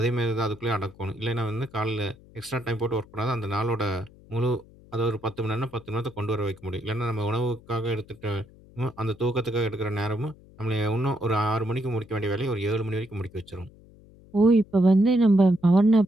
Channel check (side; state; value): left; noise; hum, 24 dB below the sound